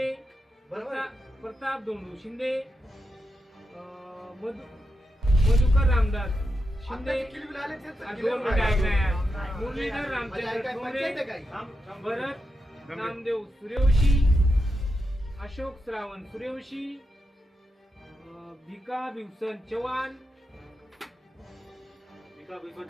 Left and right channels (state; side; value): normal; both; correlation 0.87